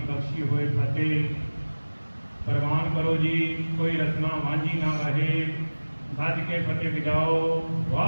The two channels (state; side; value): inverted; both; correlation -1.00